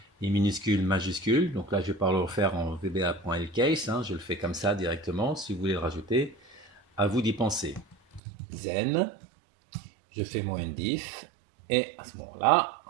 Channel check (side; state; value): left; drops out; at 8.2 s